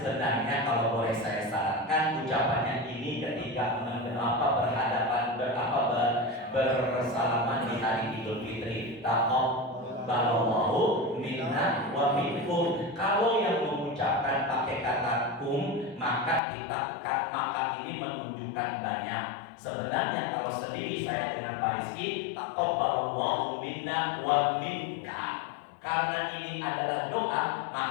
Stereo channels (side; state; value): right; drops out; at 16.4 s